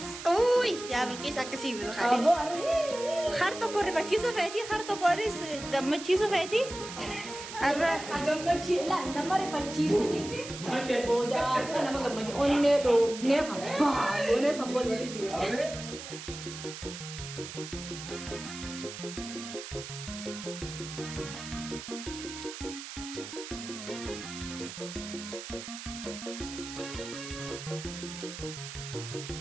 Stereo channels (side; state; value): right; noise; hiss, 10 dB below the sound